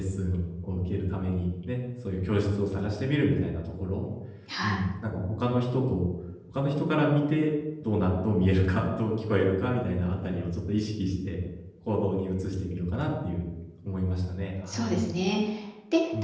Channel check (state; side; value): identical; both; correlation 1.00